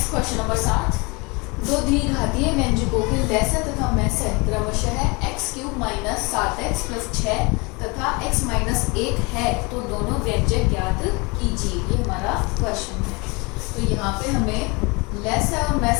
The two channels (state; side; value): quieter; right; 27.7 dB